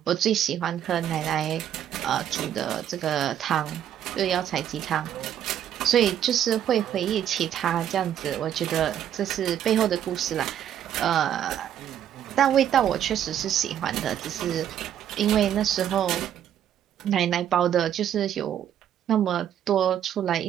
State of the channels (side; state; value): left; quieter; 10.2 dB